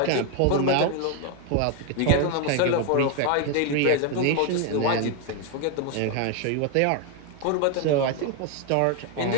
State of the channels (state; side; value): different; both; correlation 0.01